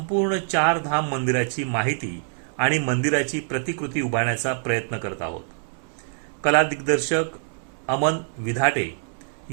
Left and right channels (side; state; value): left; silent; 62 dB below the other